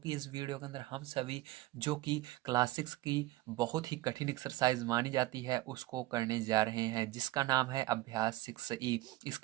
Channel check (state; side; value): quieter; left; 17.5 dB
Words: इस वीडियो के अंदर हम सभी जो कि क्लास 6 की बहुत ही कठिन एक्सरसाइज मानी जाती है उसको करने जा रहे हैं, जिसका नाम है अभ्यास 6E।